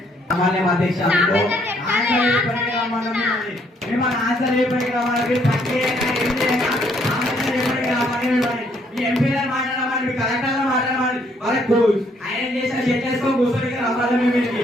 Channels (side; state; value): both; normal; correlation 0.68